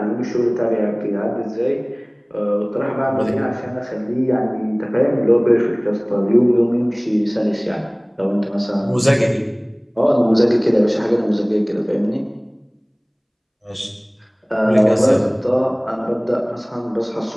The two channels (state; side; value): identical; both; correlation 1.00